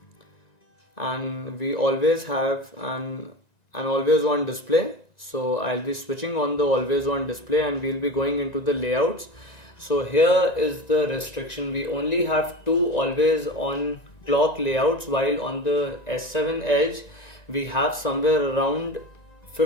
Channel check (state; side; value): late; right; 1.9 ms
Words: And we always have an always on display. So I'll be switching on the always on display and we'll be going into the layouts. So here is the restriction: we only have 2 always on clock layouts, while on the S7 Edge we have somewhere around